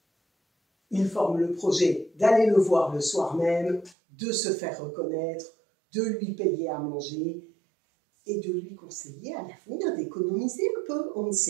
Il forme le projet d'aller le voir le soir même, de se faire reconnaître, de lui payer à manger et de lui conseiller à l'avenir d'économiser un peu. On ne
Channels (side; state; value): left; drops out; at 4.0 s